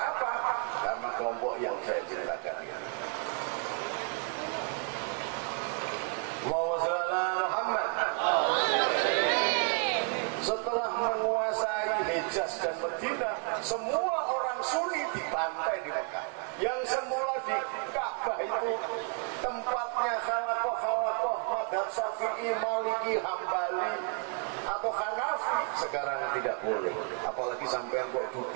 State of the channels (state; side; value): quieter; left; 39.8 dB